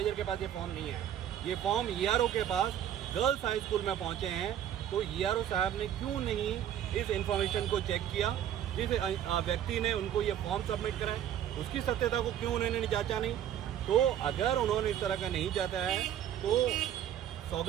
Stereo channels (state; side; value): quieter; left; 10.6 dB